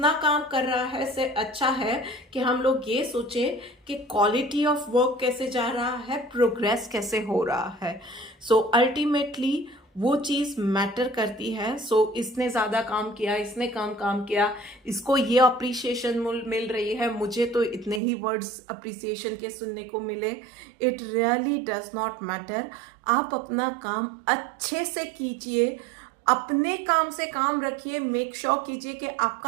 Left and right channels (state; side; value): drops out; left; at 18.0 s